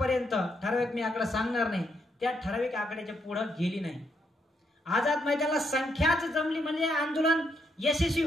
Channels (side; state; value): both; normal; correlation 0.77